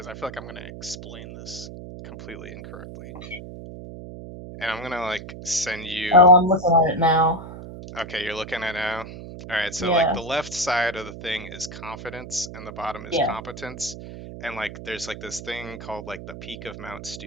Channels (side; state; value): right; noise; hum, 12 dB below the sound